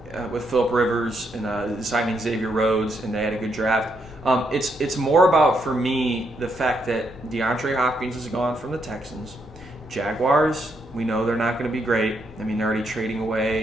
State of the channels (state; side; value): normal; both; correlation 0.77